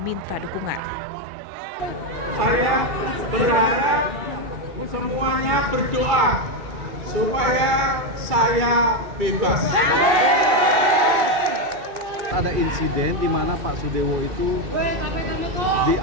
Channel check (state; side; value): late; left; 2.7 ms